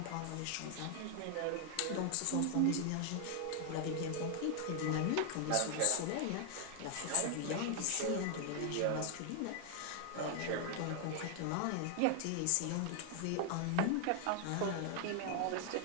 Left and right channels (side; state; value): both; different; correlation 0.00